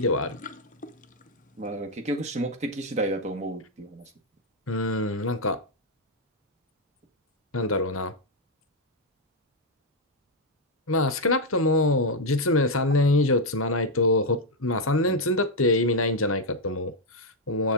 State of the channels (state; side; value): normal; both; correlation 0.01